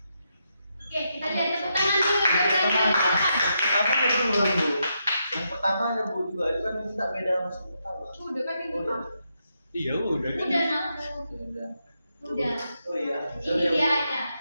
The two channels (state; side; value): inverted; both; correlation -0.82